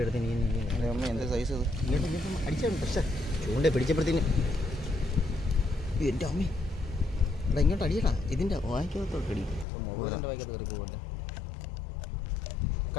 എടുത്ത് നീ അമ്മ എന്താ സൈസ് അത്? അടിച്ചാണ്. പക്ഷേ ചൂണ്ട പിടിച്ചപ്പോഴത്തേന് എൻ്റെ അമ്മേ എടാ ഇങ്ങോട്ട് അടിയടാ, ഇതിൻ്റെ വായിക്കകത്തോട്ടടി. മൊബൈലിൻ്റെ വായിക്കകത്ത് കയറി പോകല്ലേ.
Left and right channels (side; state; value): right; drops out; at 9.7 s